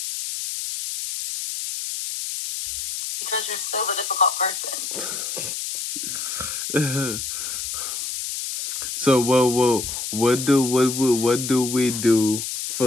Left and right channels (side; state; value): left; noise; hiss, 5 dB below the sound